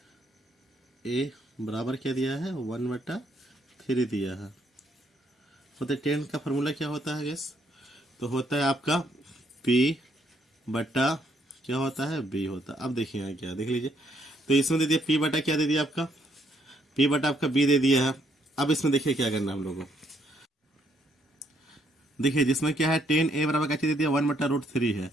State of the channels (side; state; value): both; normal; correlation 0.71